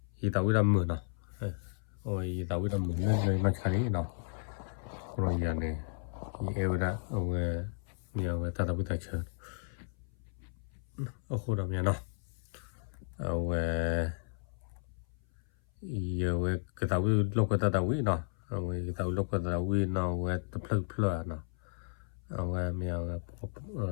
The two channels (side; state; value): right; silent; 55 dB below the other